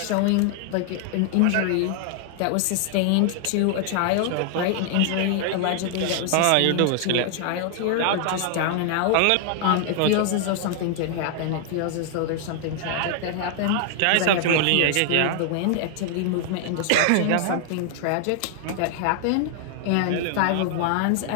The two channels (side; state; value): both; different; correlation 0.00